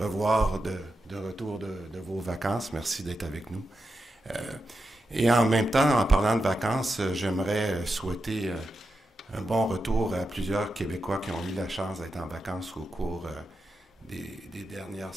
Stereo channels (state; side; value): normal; both; correlation 0.88